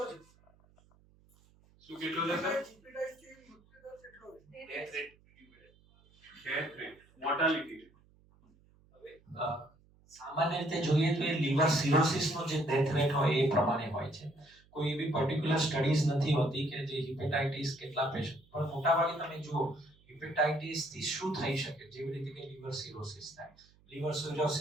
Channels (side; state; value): right; noise; hum, 30 dB below the sound